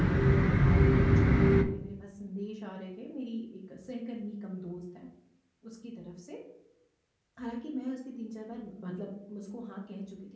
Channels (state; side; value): identical; both; correlation 1.00